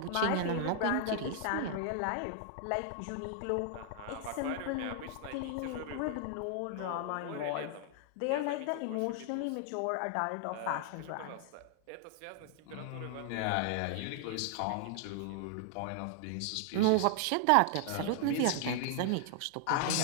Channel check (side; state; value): both; different; correlation 0.00